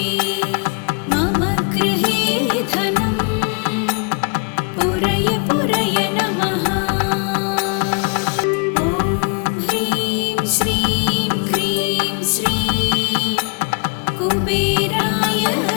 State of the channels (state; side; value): quieter; right; 36.3 dB